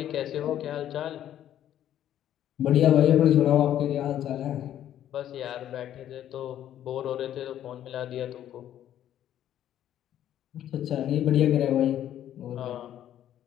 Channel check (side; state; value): right; quieter; 11.3 dB